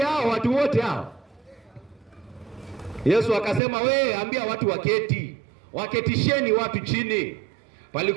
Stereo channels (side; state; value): left; drops out; at 3.6 s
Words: hao watu wote hao? Yesu akasema, we ambia watu waketi. Waketisheni watu chini.